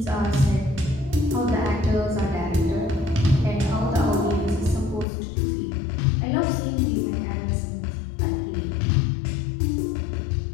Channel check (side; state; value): right; drops out; at 5.1 s